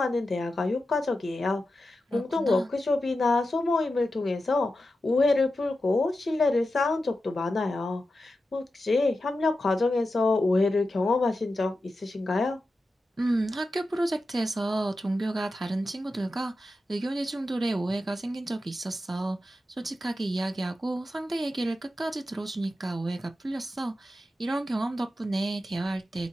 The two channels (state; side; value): normal; both; correlation 0.91